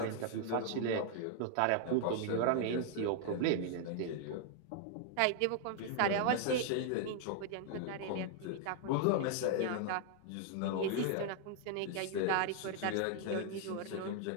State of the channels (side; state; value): both; different; correlation -0.01